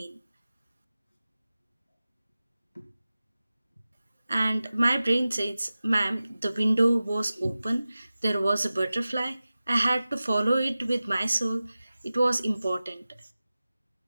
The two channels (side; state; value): both; inverted; correlation -0.96